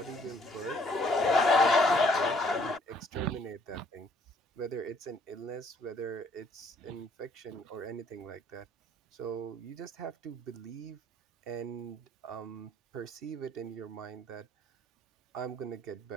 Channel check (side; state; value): both; normal; correlation 0.63